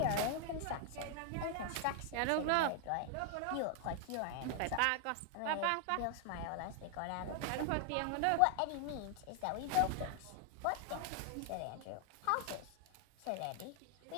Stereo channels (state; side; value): different; both; correlation 0.00